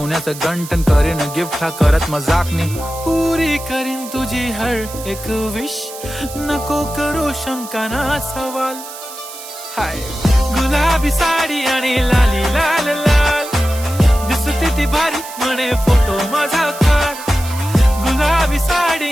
गंटन. करीन गिफ्ट हा करत मजाकनी, पुरी करीन तुझी हर एक विश. नको करू शंका ना सवाल. हाय गुलाबी साडी आणि लाली लाल लाल, दिसते ती भारी म्हणे फोटो माझा काढ. गुलाबी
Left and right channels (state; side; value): noise; right; hiss, 13 dB below the sound